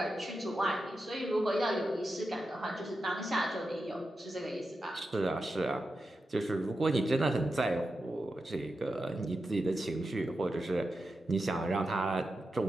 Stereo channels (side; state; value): both; normal; correlation 0.90